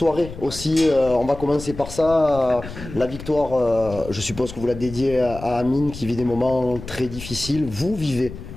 aussi. On va commencer par ça. La victoire, je suppose que vous la dédiez à Amine qui vit des moments très difficiles. Vous vivez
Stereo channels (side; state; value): left; noise; rumble, 13 dB below the sound